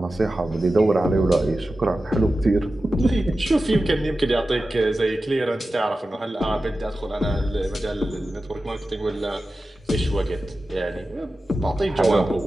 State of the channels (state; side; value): normal; both; correlation 0.94